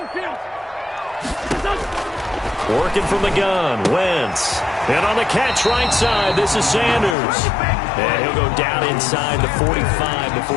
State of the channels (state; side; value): drops out; right; at 7.2 s